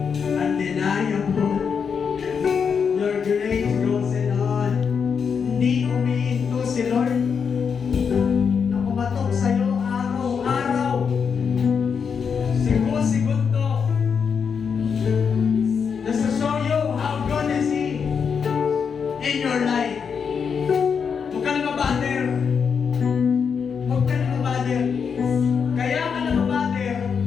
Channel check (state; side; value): quieter; right; 6.4 dB